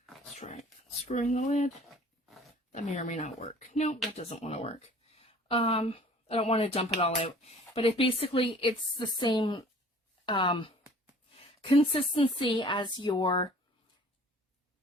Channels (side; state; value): both; normal; correlation 0.50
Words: let's try screwing the lid. That may or may not work. Nope, that doesn't want to work. I don't want to dump it all out, but it's the same consistency as your